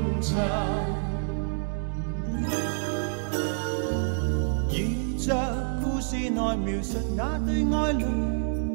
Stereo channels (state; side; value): silent; left; 60 dB below the other